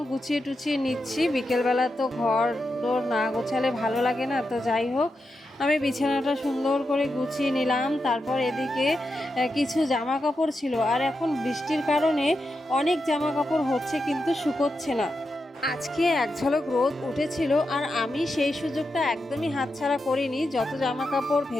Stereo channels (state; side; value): normal; both; correlation 0.87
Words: গুছিয়ে টুছিয়ে নিচ্ছি। বিকেলবেলা তো ঘর দোর না গোছালে ভালো লাগে না। তো যাই হোক, আমি বিছানাটা সুন্দর করে গুছিয়ে নিলাম। তারপর এদিকে কিছু জামা কাপড় ছিল, আর এখন বৃষ্টির কারণে অনেক জামা কাপড় হচ্ছে কিন্তু শুকোচ্ছে না। আজকে এক ঝলক রোদ উঠেছিল, আর আমি সেই সুযোগটা একদমই হাতছাড়া করিনি। যত জামা কাপড়